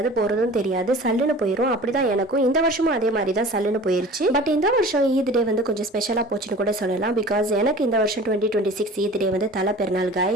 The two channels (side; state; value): both; normal; correlation 0.41